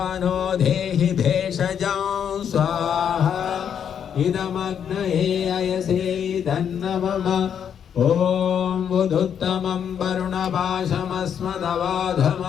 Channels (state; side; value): quieter; right; 8.3 dB